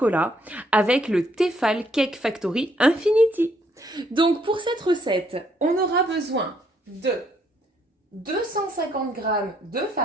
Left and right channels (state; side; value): normal; both; correlation 0.70